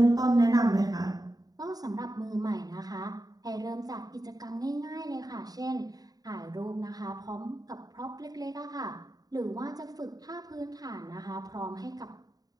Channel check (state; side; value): late; left; 0.18 ms